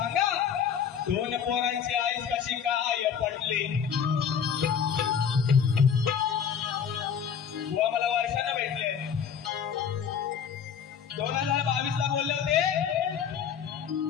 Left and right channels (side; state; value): right; quieter; 7.6 dB